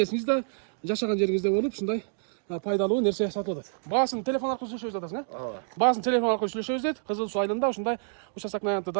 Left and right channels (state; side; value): silent; left; digital silence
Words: жашаган жериңизде болуп, ушундай пайдалуу нерсе сатып атат. Баасын телефон аркылуу сүйлөшөбүз атасың, Баасын телефон аркылуу сүйлөшөбүз дейт. Кызыл Суу айылында ушундай участоктун аянты